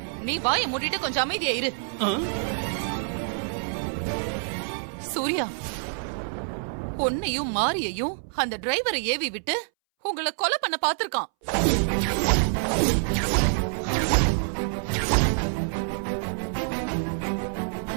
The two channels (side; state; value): left; silent; 60 dB below the other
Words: நீ வாயை மூடிட்டு கொஞ்சம் அமைதியா இரு. சூர்யா, பொன்னையும் மாரியையும் அந்த டிரைவரை ஏவி விட்டு உங்களை கொலை பண்ண பாத்திருக்கான்.